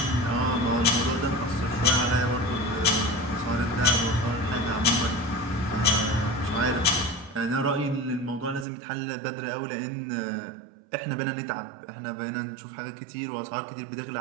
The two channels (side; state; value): left; drops out; at 8.7 s